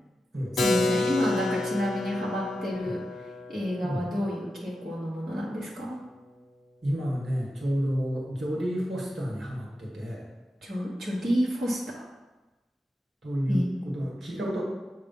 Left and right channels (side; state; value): both; normal; correlation 0.90